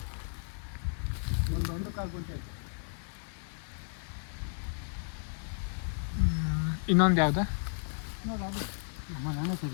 ಒಂದು ಕಾಲು ಗುಂಟೆ ಆಯ್ತು. ಇನ್ನೊಂದು ಯಾವ್ದು? ನೋಡಿ ಅದು ನಮ್ಮ ನಾನೇ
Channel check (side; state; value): right; silent; 55 dB below the other